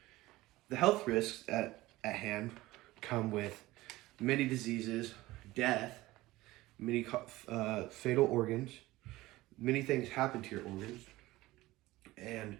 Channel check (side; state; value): left; quieter; 18.4 dB